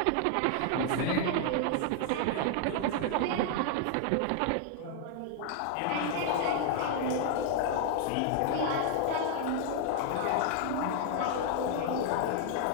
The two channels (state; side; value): different; both; correlation 0.00